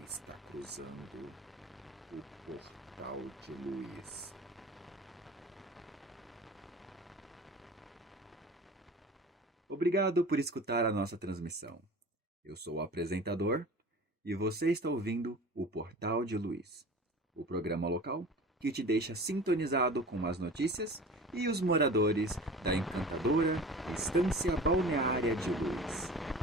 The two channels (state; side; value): normal; both; correlation 0.39